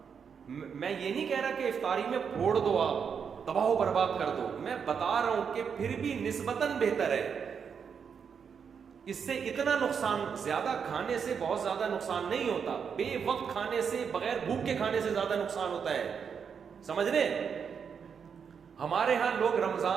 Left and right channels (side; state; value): left; quieter; 6.7 dB